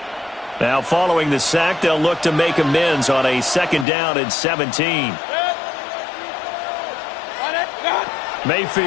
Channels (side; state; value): right; drops out; at 3.9 s